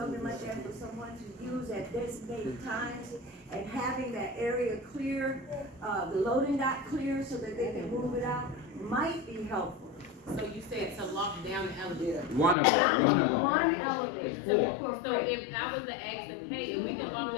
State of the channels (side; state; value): right; drops out; at 12.6 s